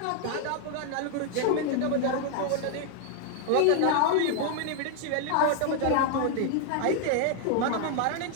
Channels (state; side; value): different; both; correlation 0.00